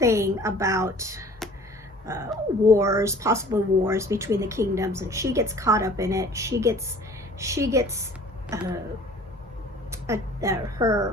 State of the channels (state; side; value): normal; both; correlation 0.49